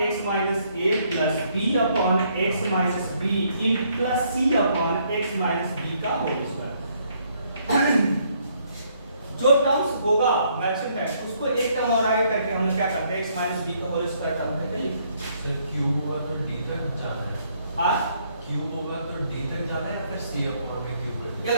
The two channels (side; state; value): both; inverted; correlation -0.69